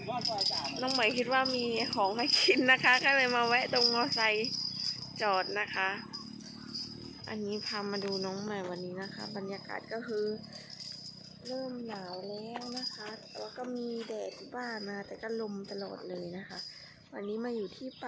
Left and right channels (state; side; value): identical; both; correlation 1.00